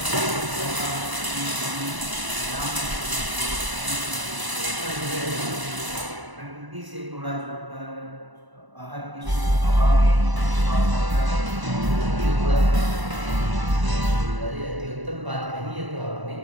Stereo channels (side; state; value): left; late; 1.0 ms